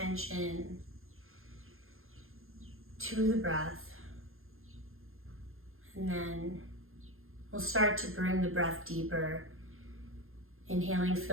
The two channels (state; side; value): late; left; 0.61 ms